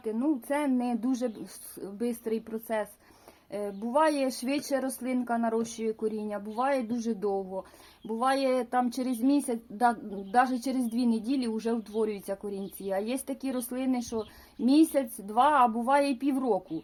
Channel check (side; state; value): both; identical; correlation 1.00